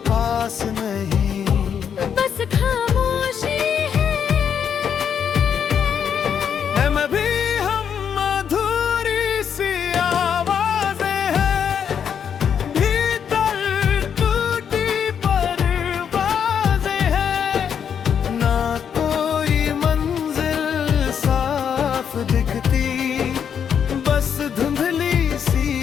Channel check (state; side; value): quieter; right; 7.8 dB